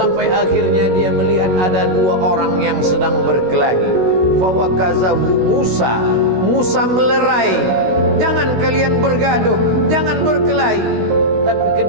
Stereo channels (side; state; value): left; late; 16 ms